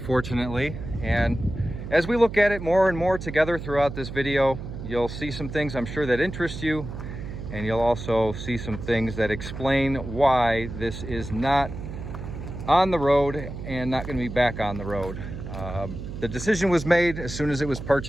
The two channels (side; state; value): right; noise; hum, 8 dB below the sound